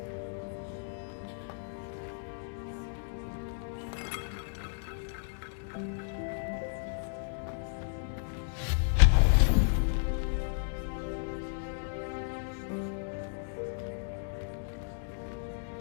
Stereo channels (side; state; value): right; silent; digital silence